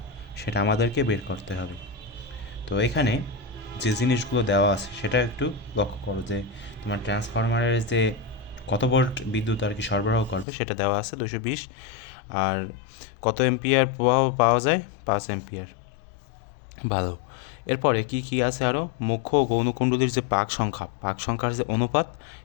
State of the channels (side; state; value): right; drops out; at 10.5 s